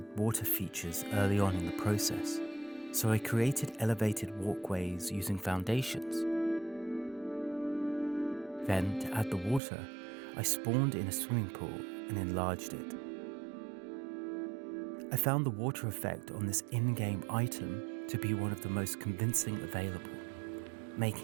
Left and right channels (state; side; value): drops out; left; at 9.6 s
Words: water features early on in the process, so I created elevated walkways using foundations. Then, to add the water, I spawned in a swimming pool and enlarged it. I found the water effect on this in-game item to be one of the most convincing available,